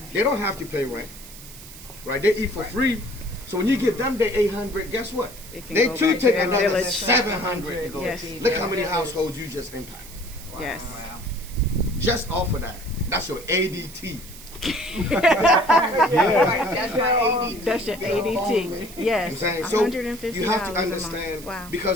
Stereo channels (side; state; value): right; noise; hiss, 16 dB below the sound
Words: they don't have to pay rent, right? They eat for free. So when you give them the 800, guess what? It can They go too back to take their another village. 700 to go. Yes. Look how many households you just impact. Yes. Just off of that. That's your ADT. Right. That's my ADT. That's your ADT. I'm Yes. saying, so $150 you have to a month. understand Wow.